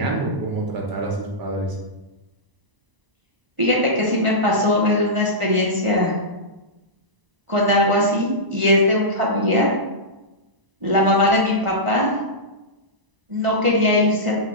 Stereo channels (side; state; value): left; late; 1.0 ms